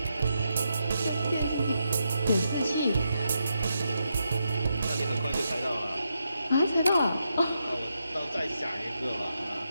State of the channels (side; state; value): both; inverted; correlation -0.83